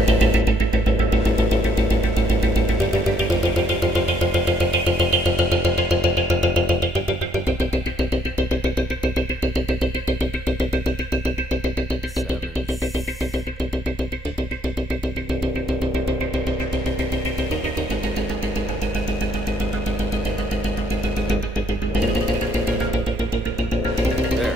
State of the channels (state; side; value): normal; both; correlation 0.69